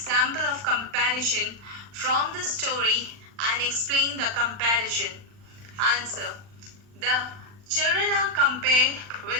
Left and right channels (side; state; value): left; late; 39 ms